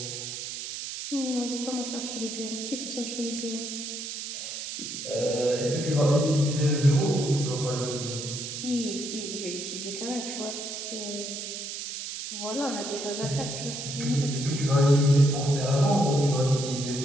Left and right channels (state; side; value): noise; right; hiss, 6 dB below the sound